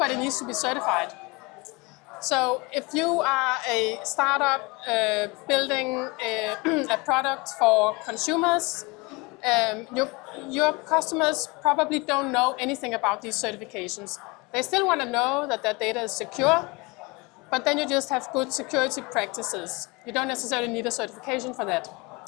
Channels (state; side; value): quieter; right; 26.4 dB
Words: needs to be certified. So if you are a startup building a product for consumers, your customers probably don't know anything about these certifications. They still want to know that their data is secure, but then you just have good security practices. You don't necessarily need a certification for that.